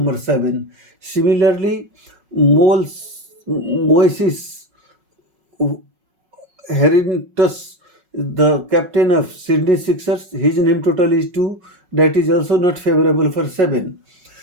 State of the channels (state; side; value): late; left; 5.4 ms